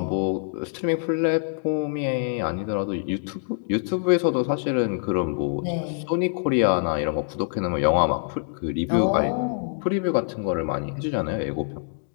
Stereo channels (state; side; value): silent; right; digital silence